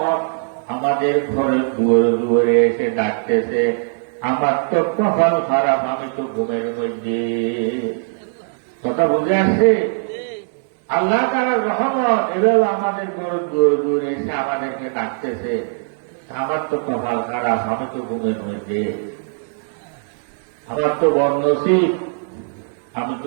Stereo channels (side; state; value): left; silent; digital silence